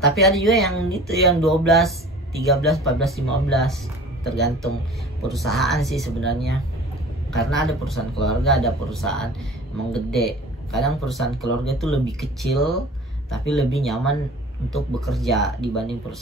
Tapi ada juga yang gitu, yang 12, 13, 14, 15, tergantung perusahaan sih sebenarnya. Karena ada perusahaan keluarga, ada perusahaan emang gede. Kadang perusahaan keluarga itu lebih kecil tapi lebih nyaman untuk bekerja dibanding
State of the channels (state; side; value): normal; both; correlation 0.43